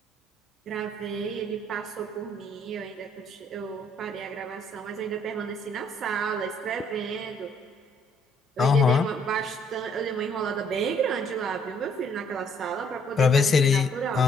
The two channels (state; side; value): normal; both; correlation 0.66